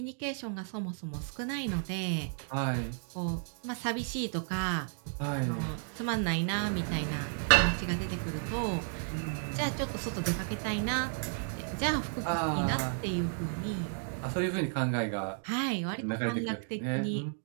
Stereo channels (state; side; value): silent; left; 56 dB below the other